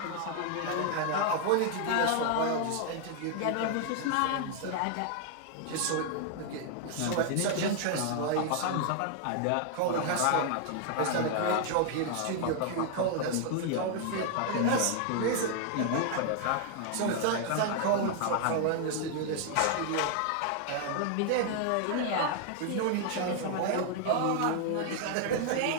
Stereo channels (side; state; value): both; different; correlation 0.00